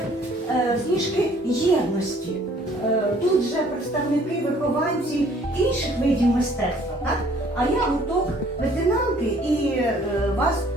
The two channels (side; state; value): both; normal; correlation 0.58